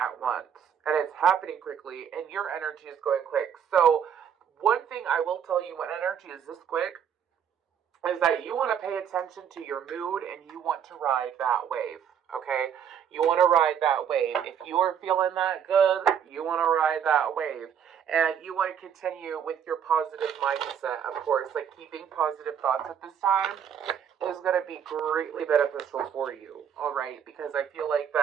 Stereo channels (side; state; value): left; quieter; 8.3 dB